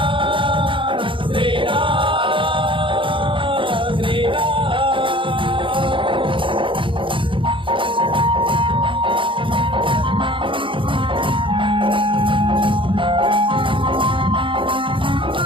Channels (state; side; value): late; left; 0.25 ms